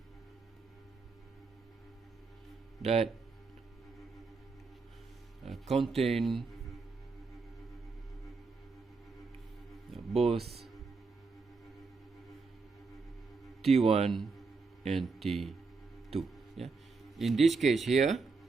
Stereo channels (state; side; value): quieter; left; 4.4 dB